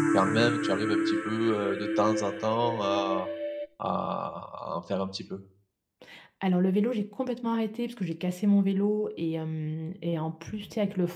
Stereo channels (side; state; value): both; identical; correlation 1.00